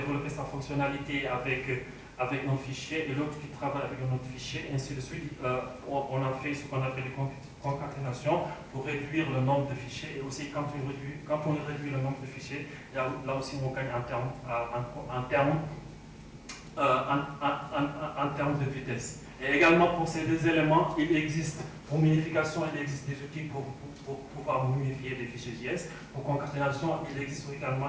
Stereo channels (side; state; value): both; identical; correlation 1.00